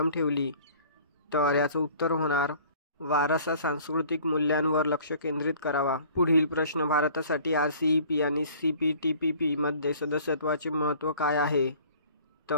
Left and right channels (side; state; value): both; inverted; correlation -0.50